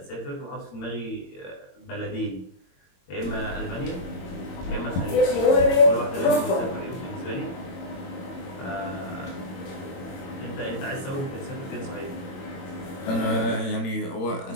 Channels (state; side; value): late; right; 22 ms